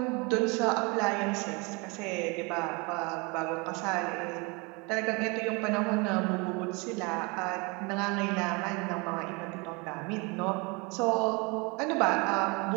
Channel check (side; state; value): left; quieter; 28.8 dB